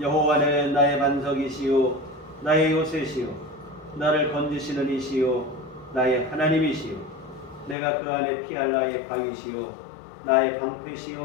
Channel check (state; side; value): drops out; right; at 7.8 s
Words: 나의 반석이시요 나의 요새시요 나를 건지시는 이시요 나의 하나님이시요 내가 그 안에 피할 나의 방이시요 나의